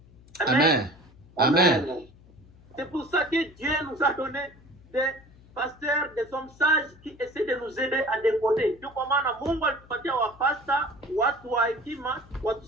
Amen. Amen. C'est pour ça que Dieu nous a donné des pasteurs, des hommes sages qui essaient de nous aider à décoder. Ndio kwa maana Mungu alitupatia wapasta, watu wa hekima,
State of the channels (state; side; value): noise; left; hum, 24 dB below the sound